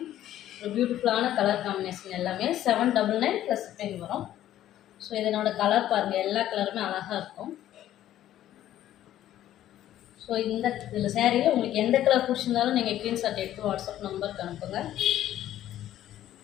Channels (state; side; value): quieter; right; 12.5 dB